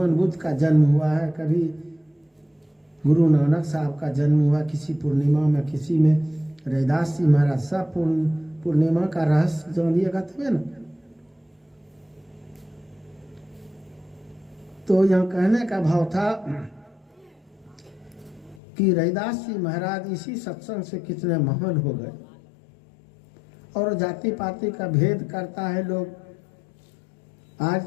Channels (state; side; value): drops out; right; at 18.6 s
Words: बुद्ध का जन्म हुआ है, कभी गुरु नानक साहब का जन्म हुआ किसी पूर्णिमा में, किसी में रविदास जी महाराज। सब पूर्णिमा का रहस्य जानिएगा तबे ना। तो यहाँ कहने का भाव था कि रविदास जी महाराज इसी सत्संग से कितने महान हो गए। और जाति पाति का भेद करता है लोग। आज